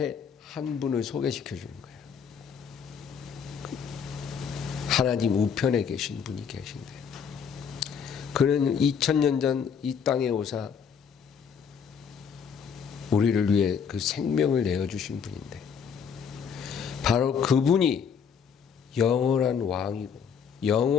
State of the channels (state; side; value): quieter; right; 6.8 dB